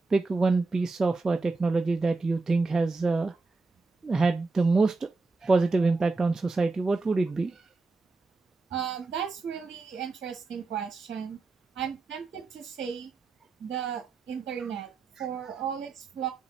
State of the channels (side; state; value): left; quieter; 3.7 dB